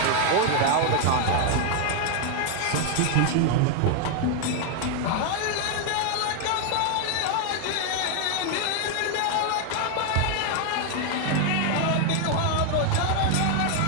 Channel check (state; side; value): different; both; correlation 0.01